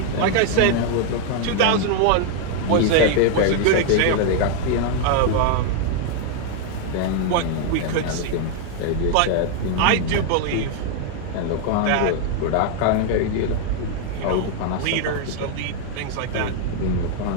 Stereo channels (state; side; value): different; both; correlation 0.00